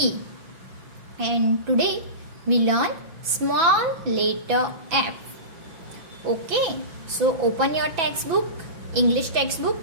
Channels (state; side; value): late; left; 6.0 ms